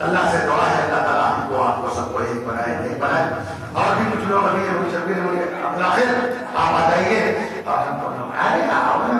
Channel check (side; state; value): both; identical; correlation 1.00